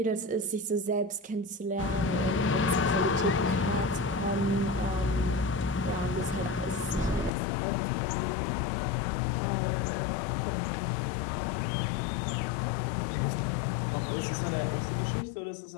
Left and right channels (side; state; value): right; drops out; at 7.3 s